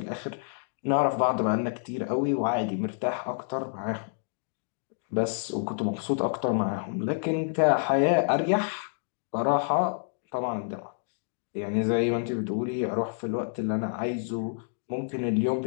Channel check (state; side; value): silent; right; digital silence